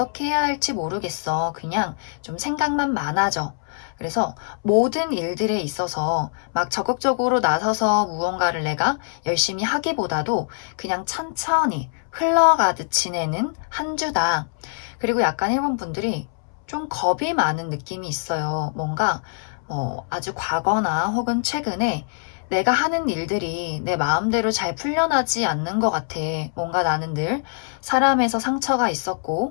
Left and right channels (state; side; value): silent; right; 63 dB below the other